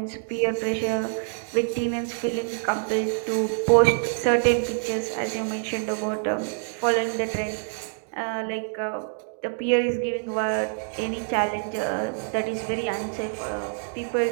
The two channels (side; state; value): left; silent; 61 dB below the other